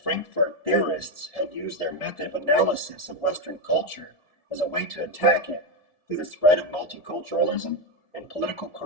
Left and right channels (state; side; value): late; right; 1.4 ms